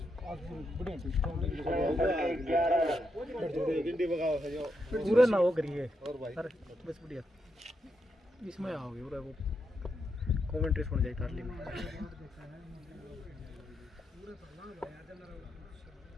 पूरे ना हो करिए सर बस बढ़िया इसमें आओगे पूरा वो कमेंट्री सुन जाए तारली में।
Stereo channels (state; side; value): normal; both; correlation 0.82